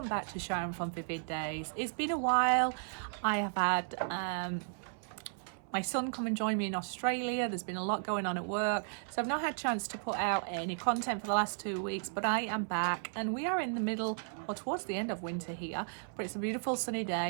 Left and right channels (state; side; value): silent; left; 55 dB below the other